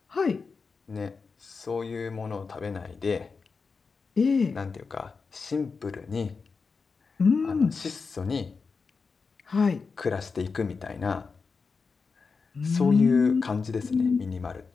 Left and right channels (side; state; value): right; quieter; 4.8 dB